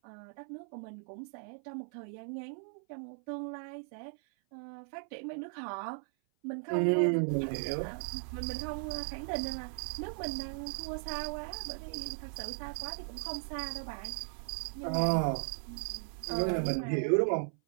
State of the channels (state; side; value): silent; left; 53 dB below the other